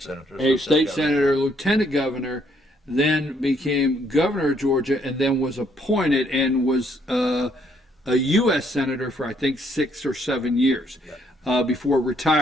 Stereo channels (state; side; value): normal; both; correlation 0.69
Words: senator. A state senator, lieutenant governor, then became governor of Georgia, and then was appointed and was a U.S. senator for, I think, 6 or 7 years before